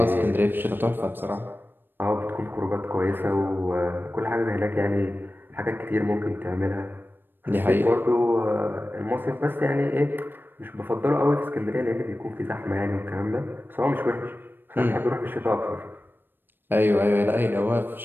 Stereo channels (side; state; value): left; late; 0.096 ms